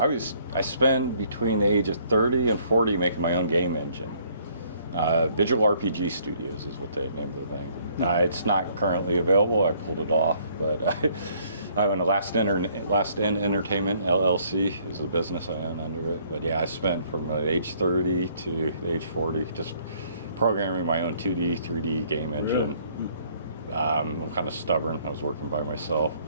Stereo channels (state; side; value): inverted; both; correlation -0.64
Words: I spent between the age of 30 and 40 making my own game engine. Visual RPG Studios is what they named the thing. It's not currently available. I pulled it off, but I own a Last In Entertainment LLC is the business I own under it. But yeah, I spent from age 30 to age 40 just programming my own 2D, 3D game engine. I'm kind of stubborn. I was working by myself.